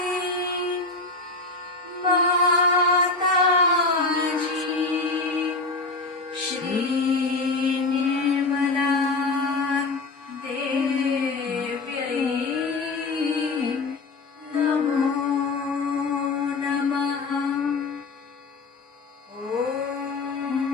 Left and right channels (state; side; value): quieter; right; 3.5 dB